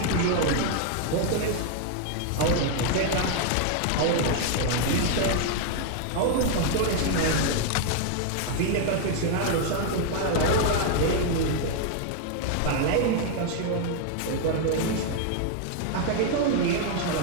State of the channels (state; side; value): different; both; correlation 0.00